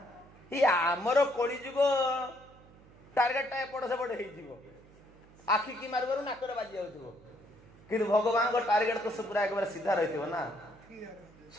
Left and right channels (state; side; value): noise; right; hum, 24 dB below the sound